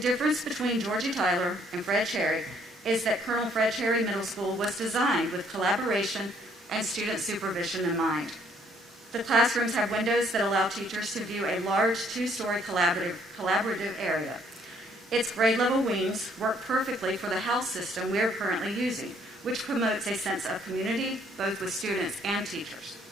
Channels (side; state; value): both; normal; correlation 0.65